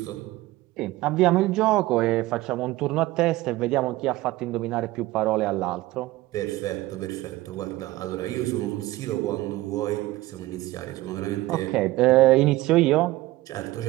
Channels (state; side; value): quieter; left; 18.0 dB